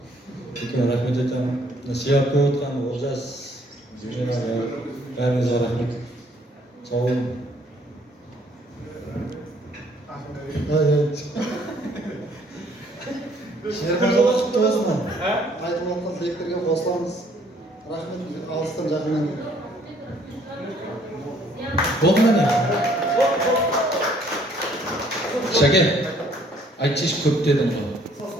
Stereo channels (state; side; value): normal; both; correlation 0.62